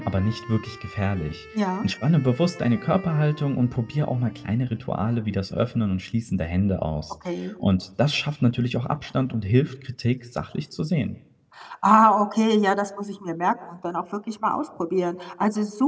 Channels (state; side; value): identical; both; correlation 1.00